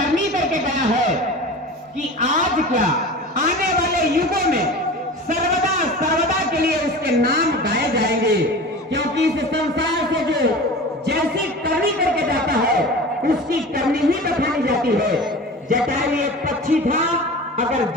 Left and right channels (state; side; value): normal; both; correlation 0.35